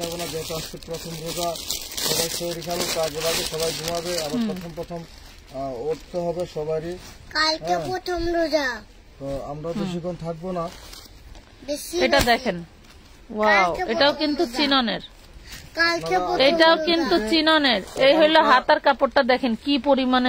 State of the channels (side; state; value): both; identical; correlation 1.00